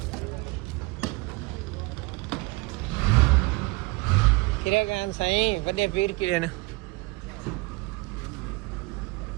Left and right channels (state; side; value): quieter; left; 24.9 dB